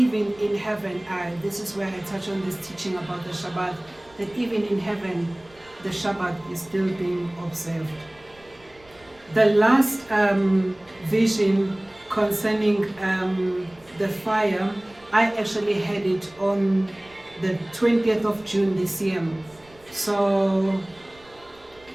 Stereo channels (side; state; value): right; noise; rumble, 28 dB below the sound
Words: in heaven, this is where I touch on this teaching about the Shabbat, that even in heaven, the Shabbat is still being observed. The last vision concerning the fire, I actually had it on the 20th of June this year. So